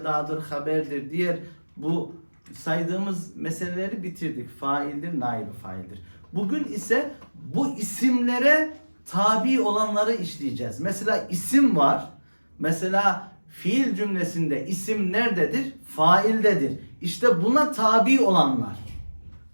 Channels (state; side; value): inverted; both; correlation -1.00